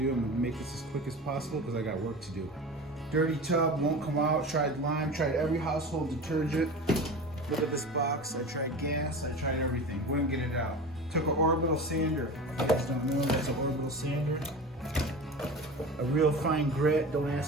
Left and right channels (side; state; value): both; normal; correlation 0.32